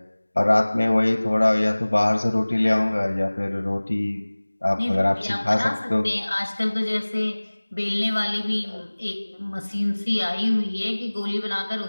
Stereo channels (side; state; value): both; inverted; correlation -1.00